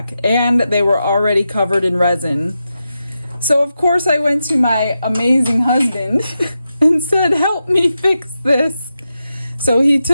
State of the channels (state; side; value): inverted; both; correlation -0.89